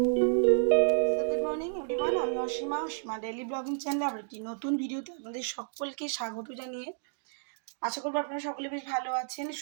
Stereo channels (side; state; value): left; silent; digital silence